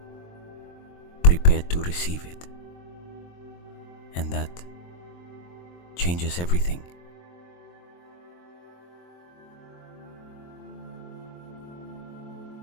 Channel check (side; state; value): right; late; 23 ms